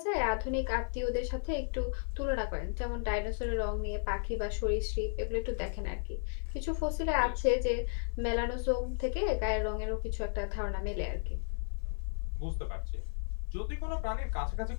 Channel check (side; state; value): right; silent; 55 dB below the other